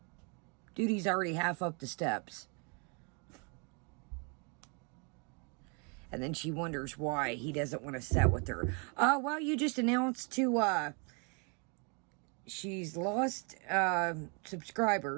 Duty's already half up the steps. And then she wonders why he doesn't want to sit with her. Well, you just announced to, she's lost,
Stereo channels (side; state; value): left; quieter; 35.6 dB